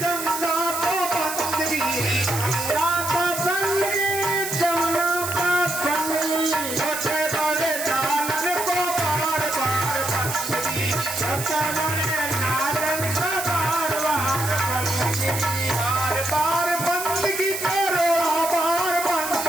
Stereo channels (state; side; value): noise; right; hiss, 6 dB below the sound